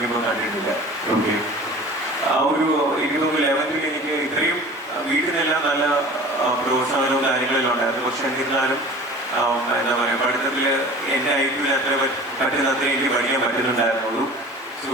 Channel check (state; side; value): normal; both; correlation 0.41